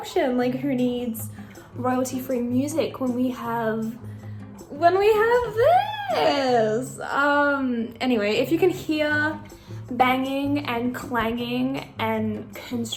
Like who needs royalty-free music when we have this? Anyway, if you can hear banging and clanging and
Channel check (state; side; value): identical; both; correlation 1.00